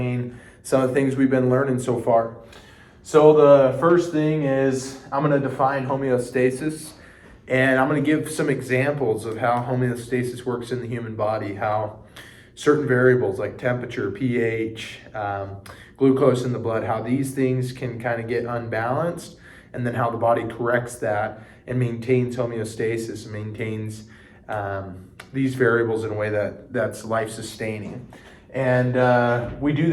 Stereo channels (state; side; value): identical; both; correlation 1.00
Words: some of the things we've been learning so far. So the first thing is I'm going to define homeostasis, and I'm going to give some examples of how homeostasis works in the human body, how certain variables like temperature, pH, glucose in the blood, how these things can kind of get unbalanced, and then how the body corrects that and maintains homeostasis and maintains these variables in a way that's life-sustaining. And we do